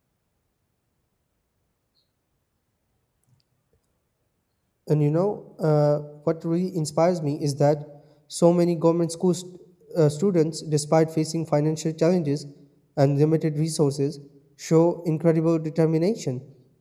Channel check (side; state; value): both; identical; correlation 1.00